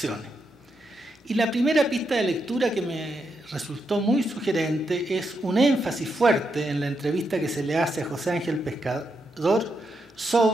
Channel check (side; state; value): both; normal; correlation 0.83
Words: Y la primera pista de lectura que me resultó muy sugerente es un énfasis fuerte en la entrevista que se le hace a José Ángel Pescador